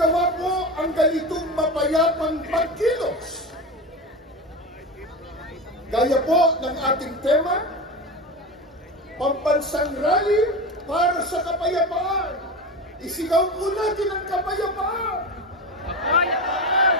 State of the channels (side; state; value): both; normal; correlation 0.24